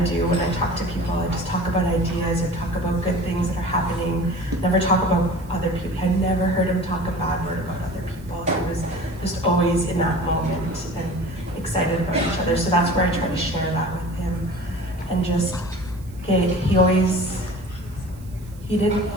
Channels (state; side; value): noise; right; hiss, 26 dB below the sound